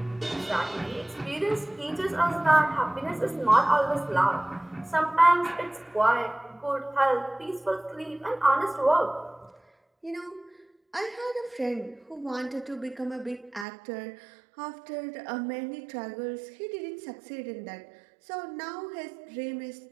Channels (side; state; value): left; drops out; at 13.7 s